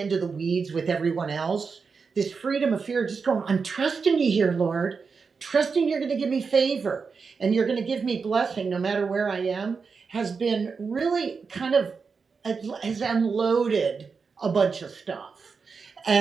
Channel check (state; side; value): quieter; left; 5.2 dB